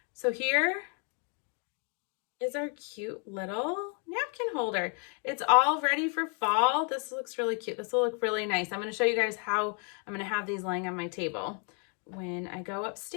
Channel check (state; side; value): quieter; right; 38.0 dB